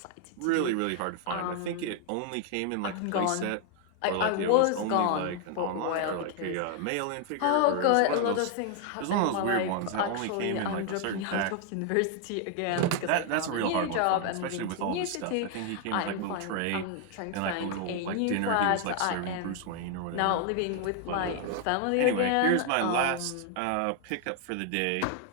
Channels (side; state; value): both; different; correlation 0.00